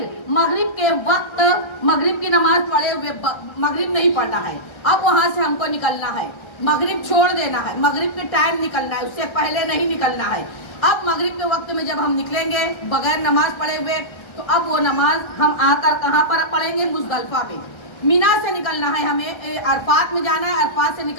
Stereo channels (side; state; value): right; late; 1.3 ms